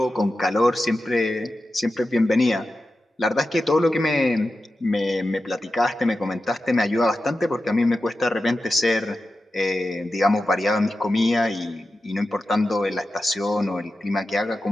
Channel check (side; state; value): both; normal; correlation 0.92